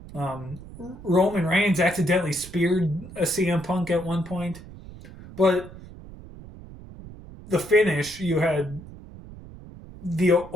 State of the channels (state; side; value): noise; right; rumble, 16 dB below the sound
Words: Roman Reigns accidentally speared a CM Punk at one point. But the finish, you had